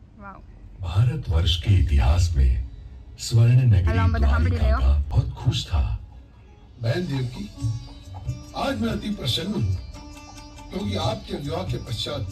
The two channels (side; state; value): both; identical; correlation 1.00